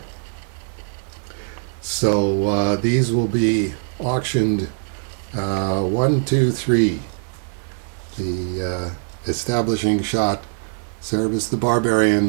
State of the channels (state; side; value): silent; left; digital silence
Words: So these will be auctioned 1, 2, 3. The establishing shot, Cerebus the